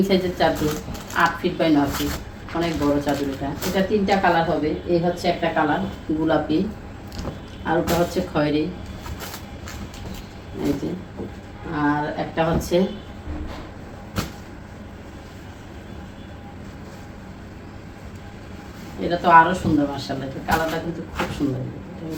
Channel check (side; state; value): both; identical; correlation 1.00